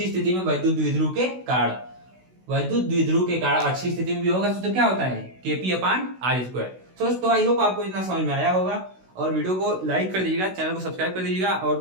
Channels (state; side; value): late; left; 16 ms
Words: द्विध्रुव के कारण, अच्छी स्थिति में विभव का सूत्र क्या होता है, केपी अपान आर स्क्वायर। तो आई होप आपको इतना समझ में आया होगा, और वीडियो को लाइक कर दीजिएगा, चैनल को सब्सक्राइब कर दीजिएगा,